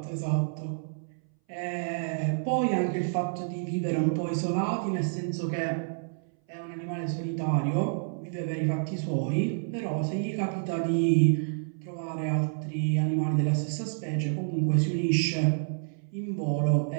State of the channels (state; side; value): silent; left; 59 dB below the other